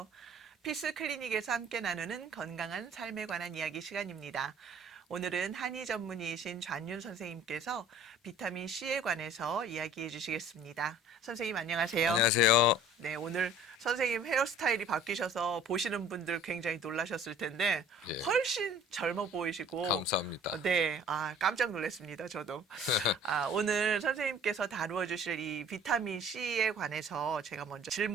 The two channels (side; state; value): both; normal; correlation 0.50